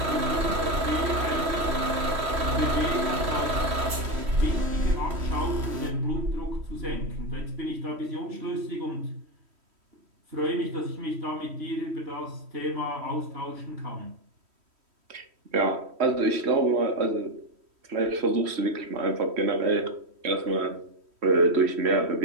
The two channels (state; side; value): late; left; 3.1 ms